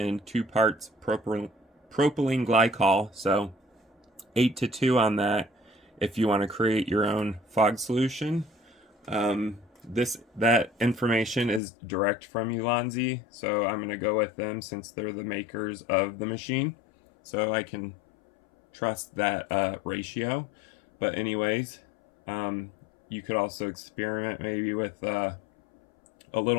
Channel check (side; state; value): right; drops out; at 11.6 s